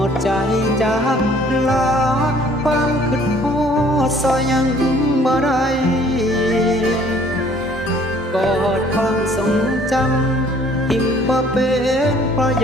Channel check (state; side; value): normal; both; correlation 0.57